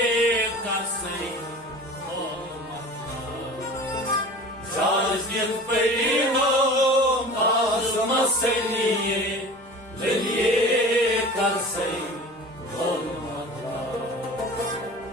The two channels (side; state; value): both; normal; correlation 0.39